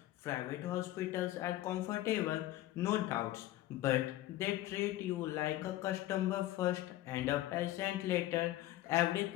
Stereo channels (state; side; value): quieter; right; 15.2 dB